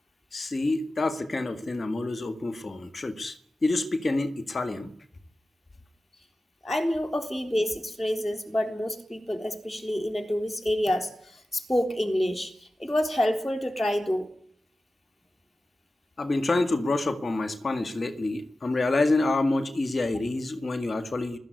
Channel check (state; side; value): normal; both; correlation 0.94